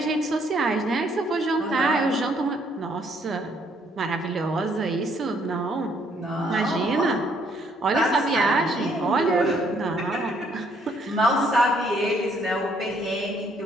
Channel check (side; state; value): both; normal; correlation 0.67